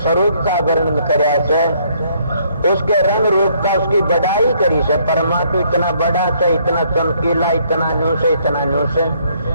स्वरूप का वर्णन करया से, उसके रंग रूप का उसकी बड़ाई करी से। परमात्मा इतना बड़ा से, इतना चमकीला, इतना न्यू से, इतना न्यू से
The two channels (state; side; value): inverted; both; correlation -0.67